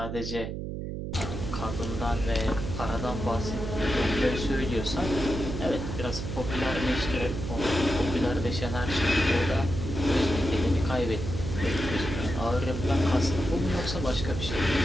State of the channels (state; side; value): noise; right; hum, 5 dB below the sound